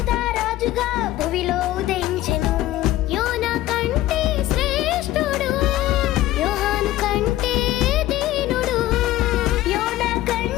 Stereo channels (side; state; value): right; quieter; 15.0 dB